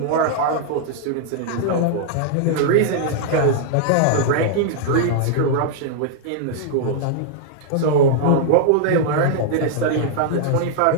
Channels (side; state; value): both; different; correlation -0.01